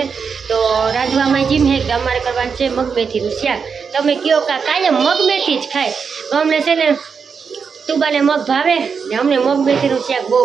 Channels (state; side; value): quieter; left; 5.9 dB